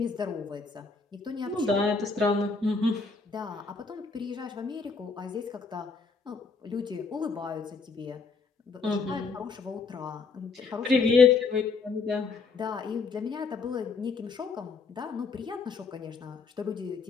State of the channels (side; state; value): right; quieter; 4.5 dB